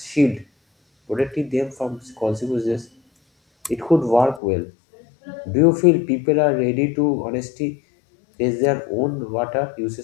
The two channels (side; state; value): right; drops out; at 4.4 s